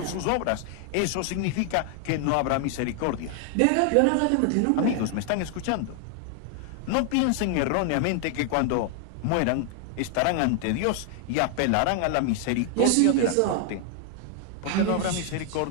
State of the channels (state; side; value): different; both; correlation 0.00